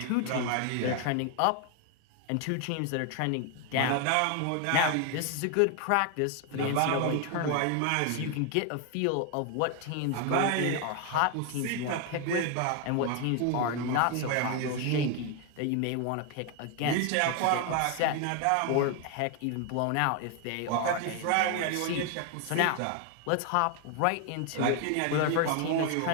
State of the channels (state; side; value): different; both; correlation 0.01